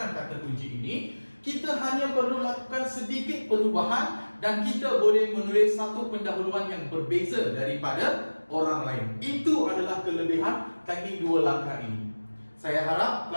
kata kunci ini, kita hanya perlu lakukan sedikit perubahan dan kita boleh menulis satu pendahuluan yang berbeza daripada orang lain. Itu adalah kelebihan teknik dua langkah ini. Saya harap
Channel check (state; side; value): inverted; both; correlation -1.00